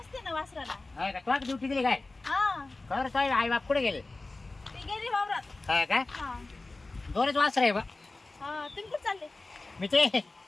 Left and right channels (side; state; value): right; quieter; 3.3 dB